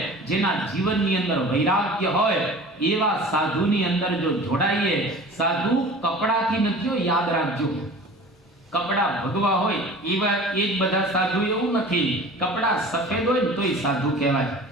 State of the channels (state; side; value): normal; both; correlation 0.41